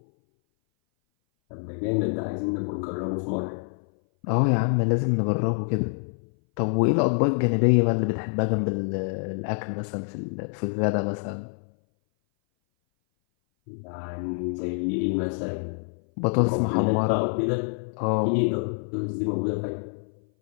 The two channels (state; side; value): silent; right; 58 dB below the other